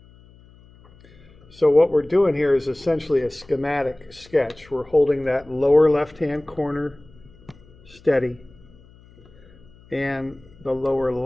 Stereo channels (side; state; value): left; noise; hum, 25 dB below the sound